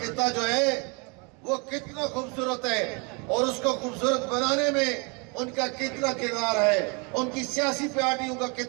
خطہ جو ہے وہ کتنا خوبصورت ہے، اور اس کو خوبصورت بنانے میں ان کا کتنا کردار ہے، ان کی سیاسی پارٹیوں کا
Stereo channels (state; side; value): quieter; left; 32.1 dB